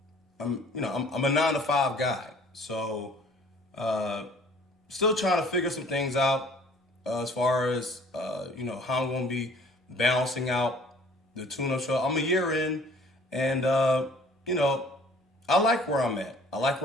I'm a 9 to 5 guy, so uh, still trying to figure some things out as far as how I'm going to be balancing out the tune-up show. I'm a year in, and you know I like where I'm at. I like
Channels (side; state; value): both; normal; correlation 0.54